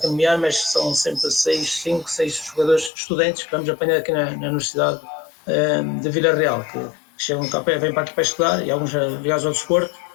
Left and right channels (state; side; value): drops out; right; at 2.9 s